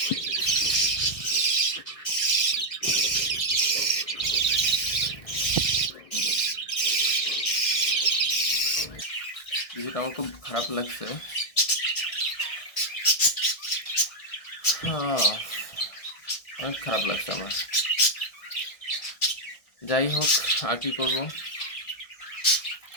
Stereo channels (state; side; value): late; right; 1.6 ms